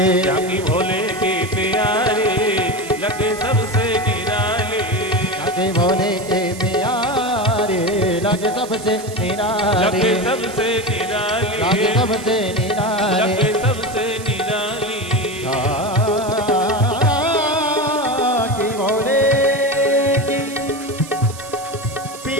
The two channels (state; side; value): noise; right; hiss, 15 dB below the sound